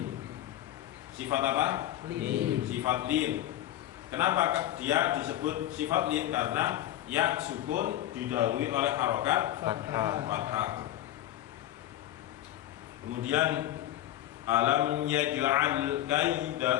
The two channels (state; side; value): quieter; right; 13.4 dB